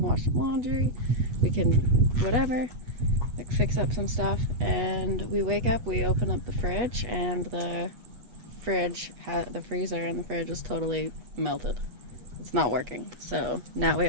wash some laundry, we can whatever, like fix up some stuff. And we wake up, we open up the fridge, and the freezer in the fridge is totally melted. It's not working. So now we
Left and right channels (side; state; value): left; late; 8.3 ms